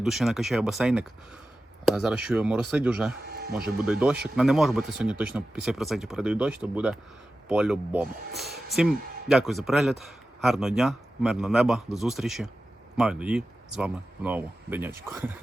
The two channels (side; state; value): both; normal; correlation 0.94